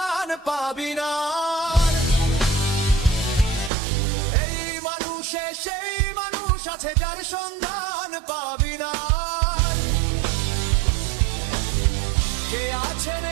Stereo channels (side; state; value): left; drops out; at 3.7 s